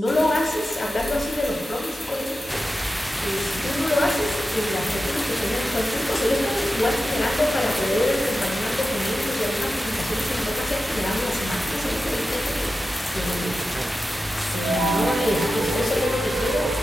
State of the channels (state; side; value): normal; both; correlation 0.92